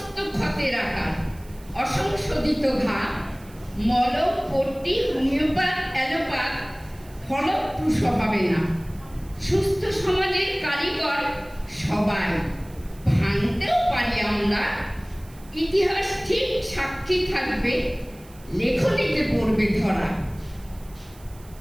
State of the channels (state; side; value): noise; right; hiss, 25 dB below the sound